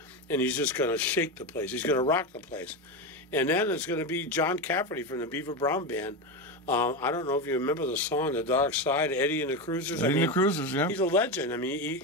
and he's just going to shake the place. He's going to rock the place. And then it's going to be John Cafferty from the Beaver Brown Band. I don't know if you remember the song "The Dark Side," Eddie and the Cruisers. Eddie and the Cruisers, yeah. He's a legend. I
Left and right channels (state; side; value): normal; both; correlation 0.15